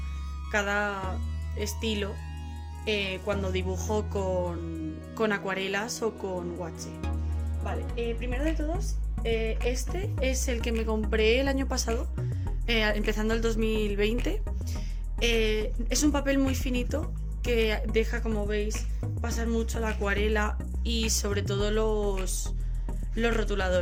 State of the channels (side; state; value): both; identical; correlation 1.00